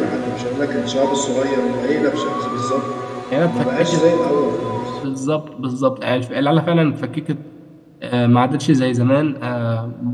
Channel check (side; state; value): both; identical; correlation 1.00